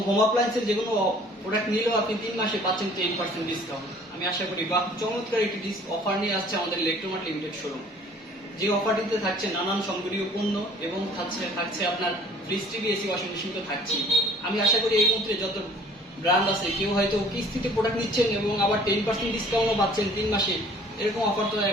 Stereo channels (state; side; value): normal; both; correlation 0.53